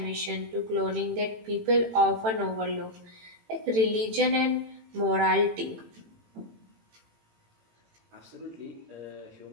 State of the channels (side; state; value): left; late; 18 ms